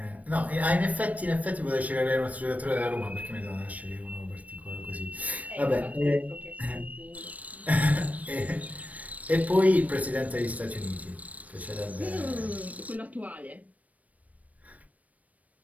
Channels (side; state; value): left; late; 0.070 ms